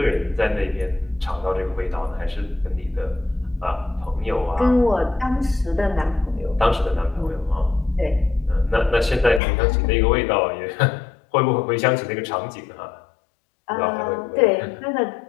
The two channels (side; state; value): right; drops out; at 9.4 s